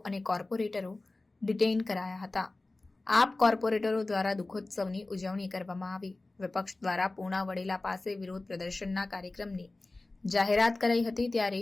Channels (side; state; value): right; quieter; 3.1 dB